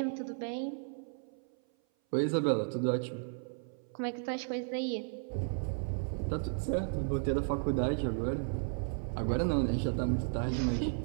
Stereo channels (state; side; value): silent; left; 55 dB below the other